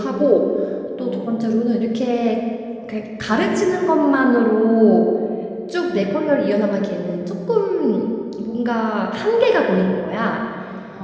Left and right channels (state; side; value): identical; both; correlation 1.00